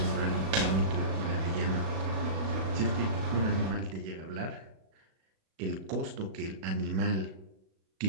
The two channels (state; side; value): late; left; 37 ms